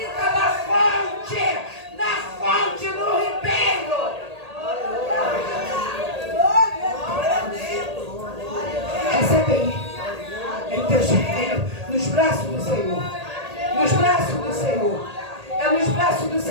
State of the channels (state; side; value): late; left; 1.8 ms